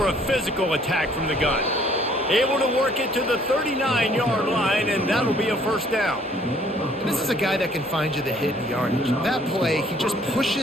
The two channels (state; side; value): normal; both; correlation 0.60